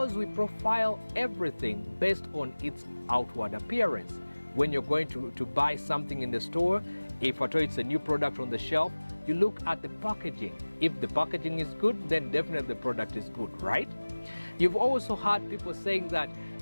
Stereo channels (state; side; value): inverted; both; correlation -1.00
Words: we profile everything based on its outward appearance. When you're going to buy something in the store, if at all it's a new product on the shelf, you look at the packaging. If the packaging is good, then definitely the product is good, right? You've also heard people saying that